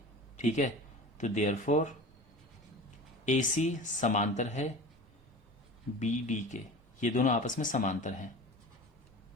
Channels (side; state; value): both; normal; correlation 0.35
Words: ठीक है। तो देयरफॉर AC समांतर है BD के, ये दोनों आपस में समांतर हैं।